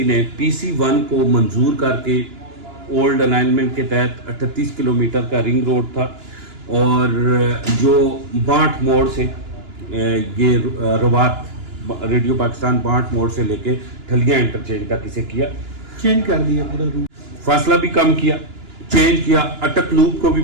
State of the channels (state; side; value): late; left; 2.9 ms